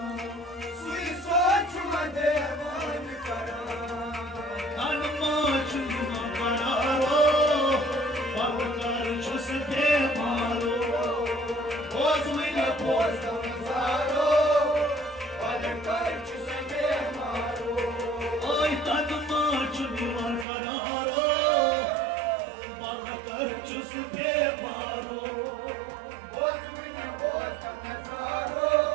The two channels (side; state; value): left; drops out; at 20.5 s